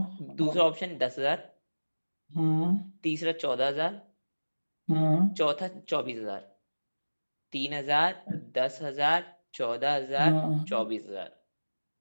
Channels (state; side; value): inverted; both; correlation -1.00